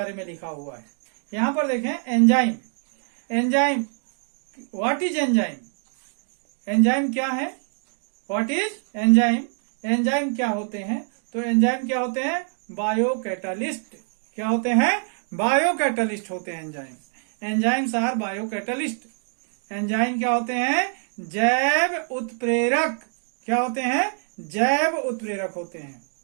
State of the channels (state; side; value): silent; left; 55 dB below the other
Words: में लिखा हुआ है। यहां पर देखें enzyme. Enzyme, what is enzyme? Enzyme क्या है? What is enzyme? एंजाइम क्या होते हैं? तो एंजाइम क्या होते हैं? बायोकैटालिस्ट। क्या होते हैं? बायोकैटालिस्ट होते हैं enzyme. Enzymes are biocatalyst. Enzyme क्या होते हैं? जैव उत्प्रेरक। क्या होते हैं? जैव उत्प्रेरक होते हैं।